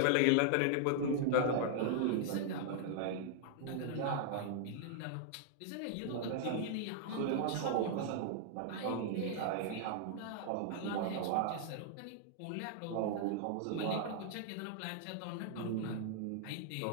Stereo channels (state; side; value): different; both; correlation -0.01